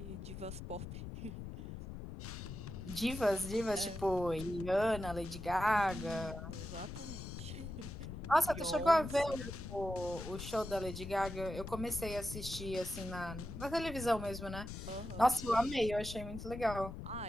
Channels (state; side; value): noise; left; rumble, 8 dB below the sound